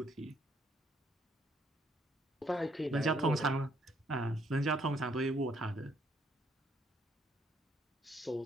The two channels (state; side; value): normal; both; correlation 0.69